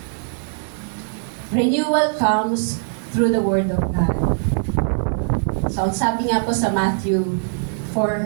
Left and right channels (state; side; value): silent; left; digital silence